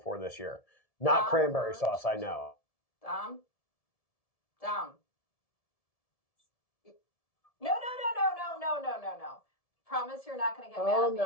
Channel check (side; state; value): right; late; 1.7 ms